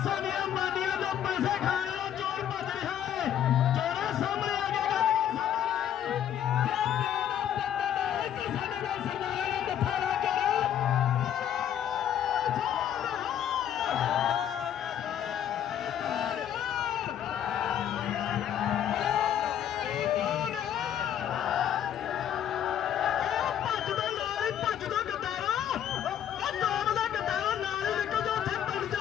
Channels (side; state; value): right; quieter; 10.1 dB